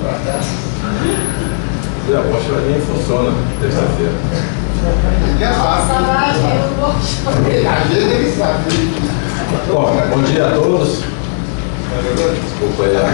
para cá. A Bocha nem funciona terça-feira. Bom dia a todos. Desculpa aí a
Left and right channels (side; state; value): right; silent; digital silence